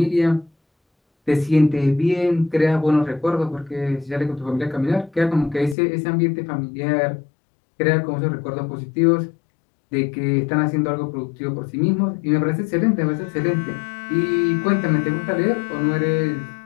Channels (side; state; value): right; drops out; at 5.8 s